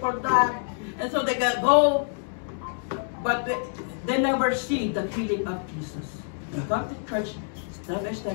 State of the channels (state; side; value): silent; right; digital silence